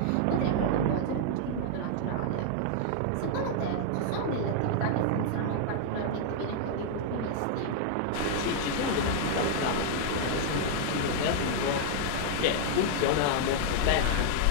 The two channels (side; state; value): both; different; correlation 0.00